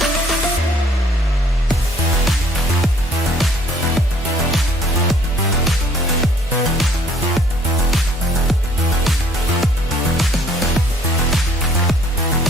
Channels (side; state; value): both; normal; correlation 0.59